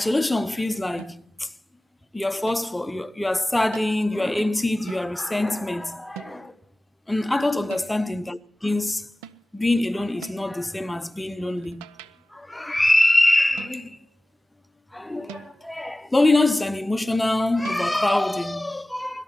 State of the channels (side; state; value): both; normal; correlation 0.97